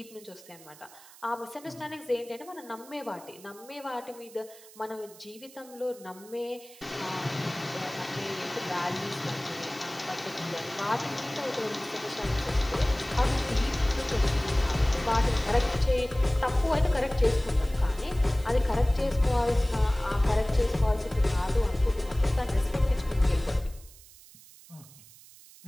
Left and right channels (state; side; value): noise; right; hiss, 21 dB below the sound